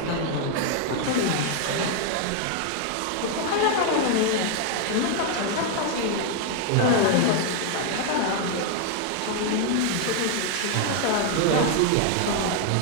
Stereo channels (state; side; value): different; both; correlation 0.00